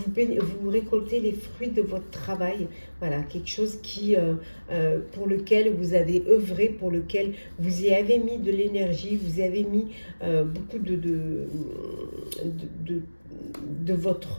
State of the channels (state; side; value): inverted; both; correlation -1.00